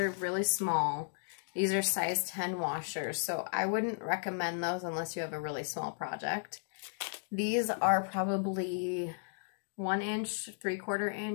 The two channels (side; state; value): right; silent; digital silence